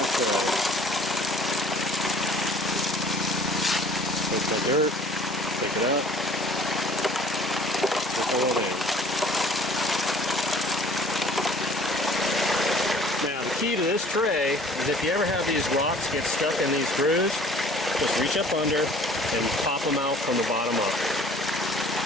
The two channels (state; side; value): normal; both; correlation 0.52